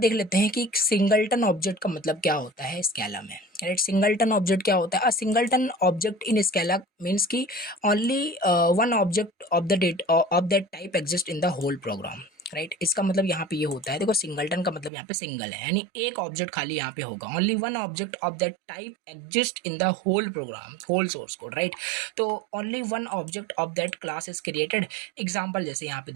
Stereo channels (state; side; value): drops out; left; at 14.9 s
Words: लेते हैं कि सिंगलटन ऑब्जेक्ट का मतलब क्या होता है स्केला में, राइट। सिंगलटन ऑब्जेक्ट क्या होता है, a singleton object in Scala means की only one object of the date of that type exist in the whole program, right. इसका मतलब यहाँ पे ये होता है, देखो सिंगलटन का मतलब यहाँ पे सिंगल है, यानी एक ऑब्जेक्ट खाली यहाँ पे होगा, only one object of that type exist in the whole program, whole source code, right. तो only one object of that class is created. Example जैसे यहाँ पे